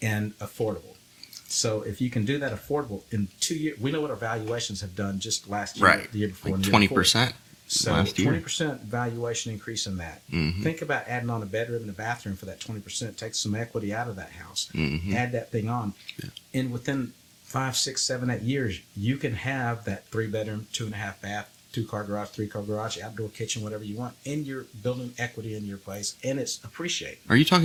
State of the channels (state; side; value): identical; both; correlation 1.00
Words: and affordable. So if you can do that affordable in 2 years, we know what our valuations have done just last year, the year before, like 20%. So 20% valuation increase in that. Think about adding on a bedroom and a bathroom for that 20%. Take some equity out of that house. Add that thing on, and within 5, 6, 7, 8 years, you can have that 3-bedroom, 2.5 bath, 2-car garage, 3-car garage, outdoor kitchen, whatever you want, and you're building equity in your place, and it's appreciating. Are you